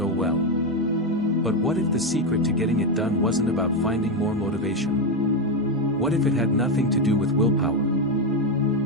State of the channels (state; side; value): normal; both; correlation 0.08